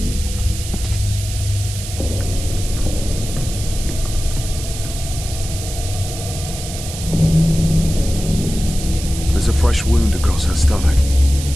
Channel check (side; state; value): right; noise; hiss, 10 dB below the sound